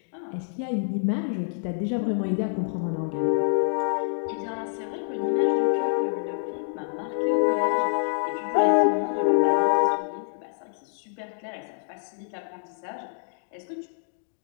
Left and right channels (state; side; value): silent; right; digital silence